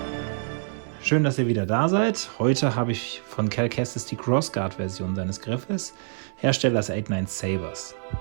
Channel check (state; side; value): silent; left; digital silence